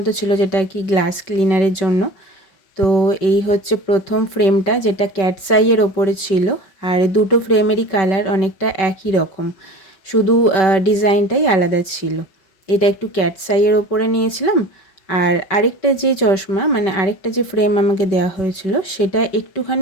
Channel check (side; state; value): right; late; 5.2 ms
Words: ছিল, যেটা কি গ্লাস ক্লিনারের জন্য। তো এই হচ্ছে প্রথম ফ্রেমটা, যেটা ক্যাটস আইয়ের ওপরে ছিল। আর দুটো ফ্রেমেরই কালার অনেকটা একই রকম, শুধু ডিজাইনটাই আলাদা ছিল। এটা একটু ক্যাটস আইয়ের ওপরে নিয়েছিলাম। আর আরেকটা যে চশমা, মানে আরেকটা যে ফ্রেম আমাকে দেওয়া হয়েছিল, সেটা